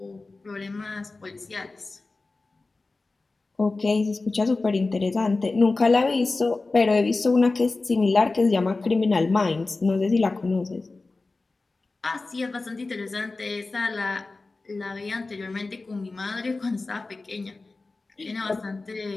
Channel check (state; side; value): quieter; right; 3.5 dB